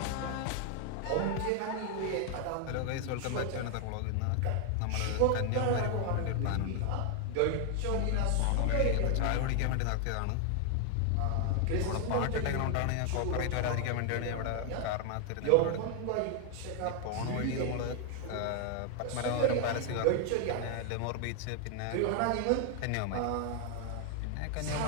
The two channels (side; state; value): both; different; correlation 0.00